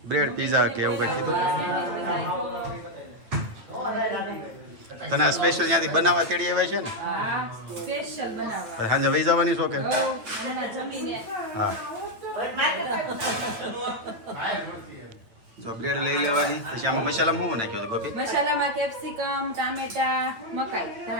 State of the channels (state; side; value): late; left; 8.8 ms